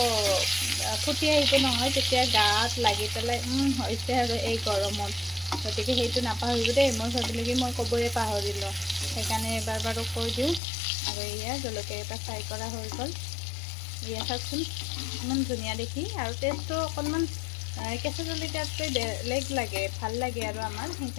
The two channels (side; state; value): right; drops out; at 10.6 s